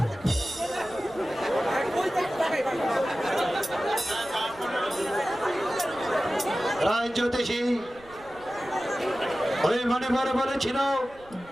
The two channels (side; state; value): right; noise; rumble, 23 dB below the sound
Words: রাজ জ্যোতিষী, ওই মণিপুর বলেছিল